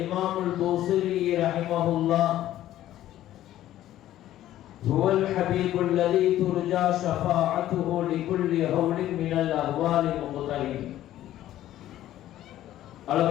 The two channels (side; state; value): right; quieter; 13.3 dB